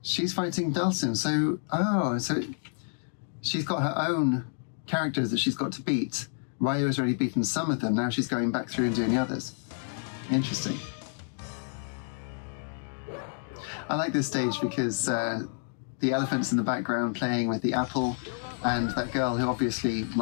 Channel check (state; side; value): silent; right; digital silence